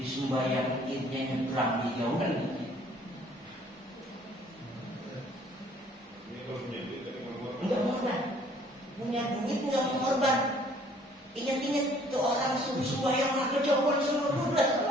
sembahyang idnya nyebrang di jauhan gitu. Enggak korban, punya duit enggak mau korban. Ingat-ingat tuh orang subuh yang nak kejauhan semua 12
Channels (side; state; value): both; normal; correlation 0.58